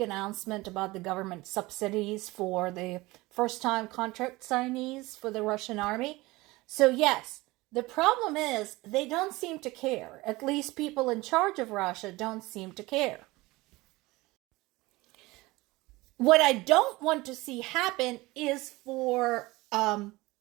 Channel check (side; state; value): left; quieter; 21.0 dB